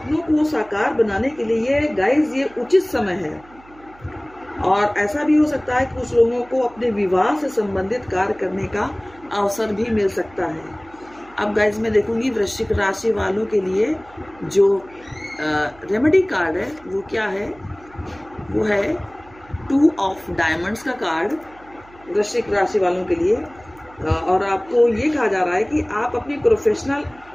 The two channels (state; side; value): noise; right; hum, 25 dB below the sound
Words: को साकार बनाने के लिए गाइस ये उचित समय है। और ऐसा भी हो सकता है कि कुछ लोगों को अपने विवाह से संबंधित कार्य करने का अवसर भी मिल सकता है। अब गाइस मैं देखूंगी वृश्चिक राशि वालों के लिए जो रेमेडी कार्ड है वो क्या है। वो है 2 ऑफ डायमंड्स का कार्ड वृश्चिक राशि वालों के लिए। और आपको ये कहा जा रहा है कि आप अपनी प्रोफेशनल